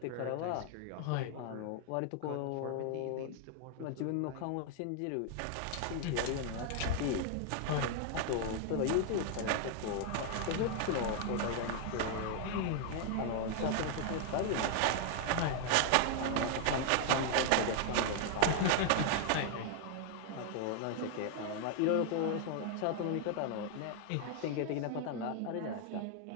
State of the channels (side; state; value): both; different; correlation 0.00